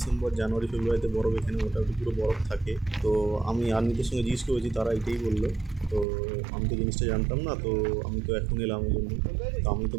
জানুয়ারি, ফেব্রুয়ারিতে বরফ এখানে মোটামুটি পুরো বরফ থাকে। তো আমি আর্মিদের সঙ্গে জিজ্ঞেস করেছি, তারা এটাই বললো। তো আমি তো জিনিসটা জানতাম না, তো আমি তো এখন এলাম ওই জন্য। তো আমি তো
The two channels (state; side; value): drops out; left; at 6.1 s